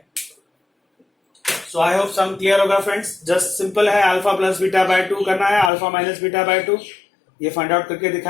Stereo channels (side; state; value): right; drops out; at 5.7 s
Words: सो आई होप सम क्लियर होगा फ्रेंड्स। जस्ट सिंपल है, अल्फा प्लस बीटा बाय 2 करना है, अल्फा माइनस बीटा बाय 2 ये फाइंड आउट करके